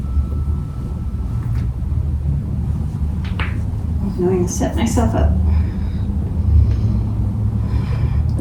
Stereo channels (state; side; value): identical; both; correlation 1.00